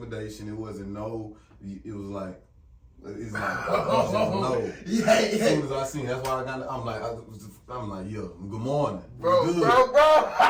It wasn't no, it was like, it's like, no. Yeah. As soon as I seen, that's why I'm like, yo, good morning. Bro.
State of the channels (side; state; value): both; identical; correlation 1.00